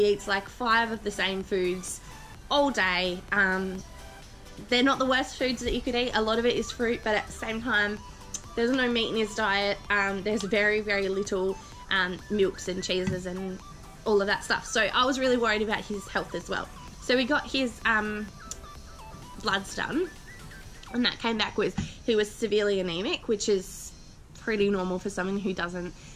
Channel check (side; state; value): both; identical; correlation 1.00